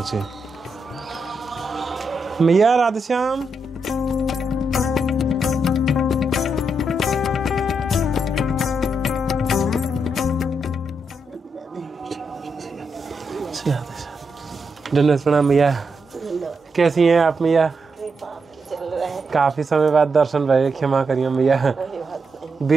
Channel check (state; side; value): normal; both; correlation 0.83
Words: मैया राधेश्याम, धन्यवाद प्रणाम मैया। कैसी हैं आप मैया? काफी समय बाद दर्शन भये, क्षमा करिए मैया।